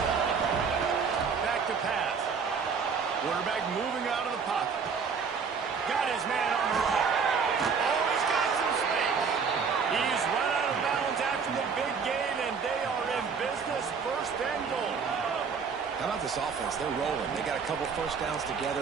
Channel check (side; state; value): left; quieter; 5.8 dB